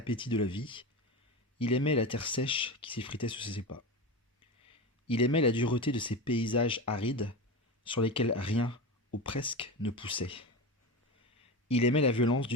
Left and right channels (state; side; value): normal; both; correlation 0.23